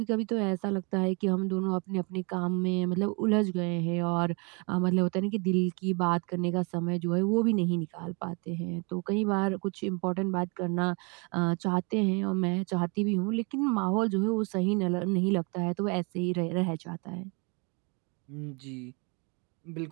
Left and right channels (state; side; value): quieter; left; 32.6 dB